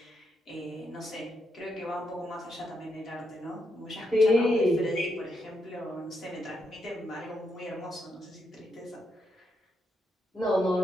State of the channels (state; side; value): normal; both; correlation 0.81